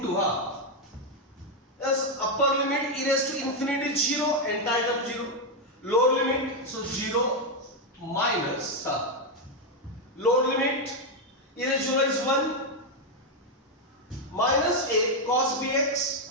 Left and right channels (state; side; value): normal; both; correlation 0.03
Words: yes, upper limit e raised to infinity 0, entire term 0. Lower limit, so 0 minus lower limit e raised to 0 is 1 minus a cos bx,